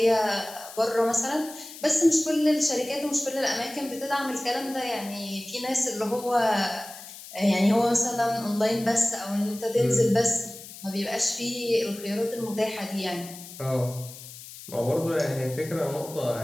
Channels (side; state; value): left; noise; hiss, 15 dB below the sound